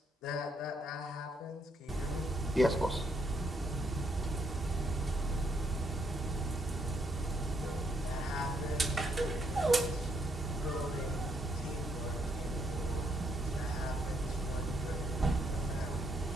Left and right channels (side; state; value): both; normal; correlation 0.74